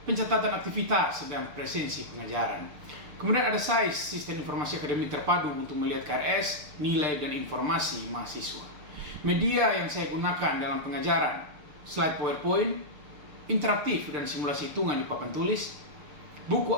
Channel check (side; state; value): left; late; 6.7 ms